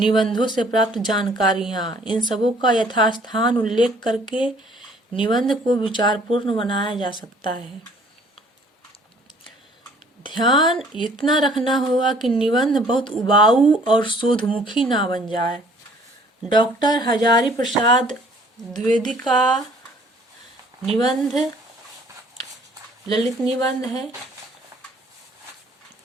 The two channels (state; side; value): normal; both; correlation 0.57